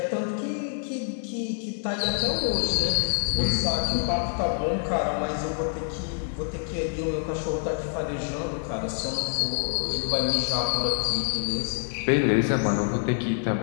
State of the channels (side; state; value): right; silent; 56 dB below the other